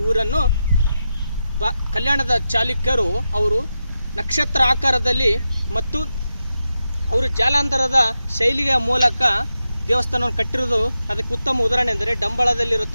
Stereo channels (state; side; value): inverted; both; correlation -0.89